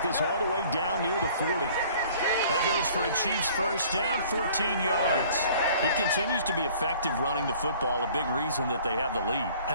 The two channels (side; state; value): both; inverted; correlation -0.52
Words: this all the way down near the 40. That goes for a Chiefs first down, 14 yards. He continues to be effective running the football, a big reason that they have the lead.